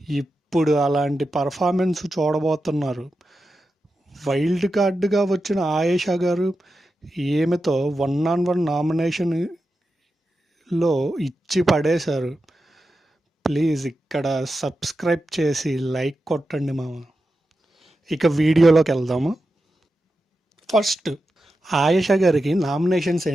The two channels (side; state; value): both; normal; correlation 0.90